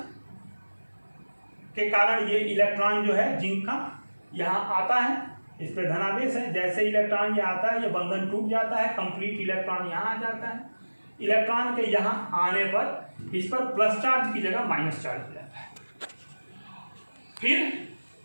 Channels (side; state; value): both; inverted; correlation -1.00